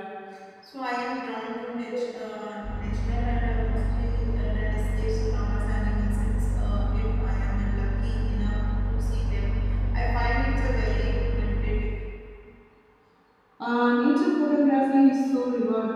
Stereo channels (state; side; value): identical; both; correlation 1.00